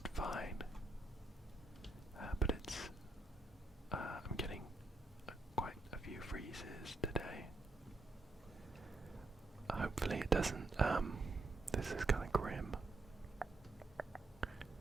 fine, but I'm getting quite a few freezes today. Hopefully it doesn't, this is kind of grim.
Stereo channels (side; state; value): left; quieter; 3.1 dB